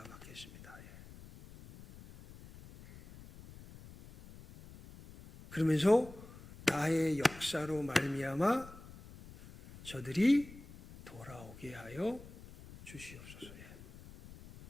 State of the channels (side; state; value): left; noise; rumble, 18 dB below the sound